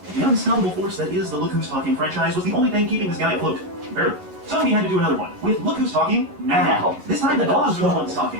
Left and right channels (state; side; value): late; left; 11 ms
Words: The unstoppable force that is the Look Who's Talking franchise was the only thing keeping this guy afloat. Barely. So he had to do another one, with Look Who's Talking Now. This time the dogs are the ones